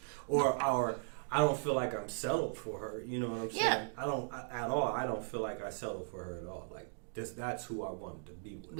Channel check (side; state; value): left; silent; digital silence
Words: or I don't feel like I'm settled for her. You know what I'm saying? Yeah. I don't at all. I don't feel like I settled for her at all. Like that's who I wanted to be with.